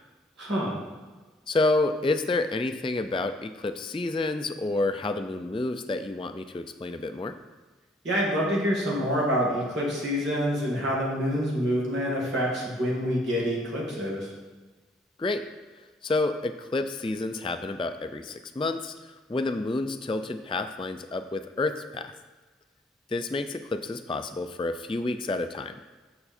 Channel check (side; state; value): both; normal; correlation 0.61